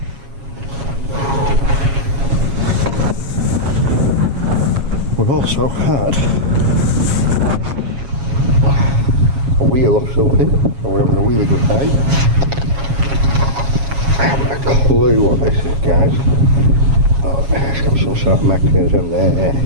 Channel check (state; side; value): late; left; 7.3 ms